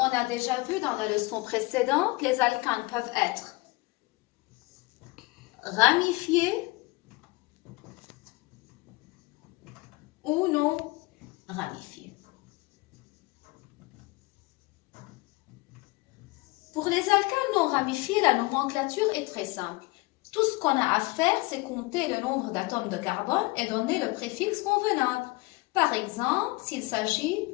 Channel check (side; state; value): right; quieter; 23.4 dB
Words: a déjà vu dans la leçon précédente, les alcanes peuvent être ramifiés ou non ramifiés. Pour les alcanes non ramifiés, la nomenclature est très simple. Tout ce qu'on a à faire, c'est compter le nombre d'atomes de carbone et donner le préfixe convenable. Par exemple, s'il s'agit